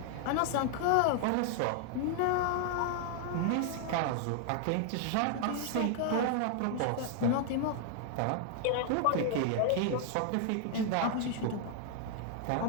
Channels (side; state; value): both; different; correlation 0.00